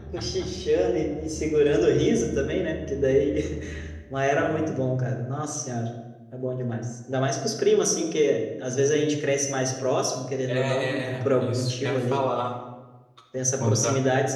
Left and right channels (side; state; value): both; identical; correlation 1.00